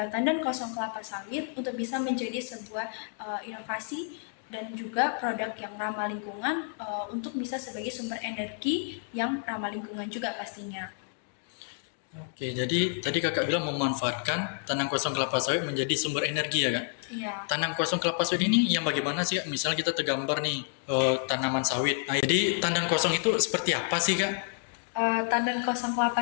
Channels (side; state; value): right; silent; 57 dB below the other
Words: tandan kosong kelapa sawit untuk bisa menjadi sebuah inovasi dan juga produk yang ramah lingkungan untuk bisa sebagai sumber energi yang ramah lingkungan juga pastinya. Oke, jadi tadi kakak bilang memanfaatkan tanam kosong kelapa sawit menjadi sumber energi ya kak? Iya. Tanam kosong kelapa sawit ini yang bagaimana sih kak? Misalnya kita tergambar nih tanaman sawit. Nah, jadi tanam kosong itu seperti apa sih kak? Tandan kosong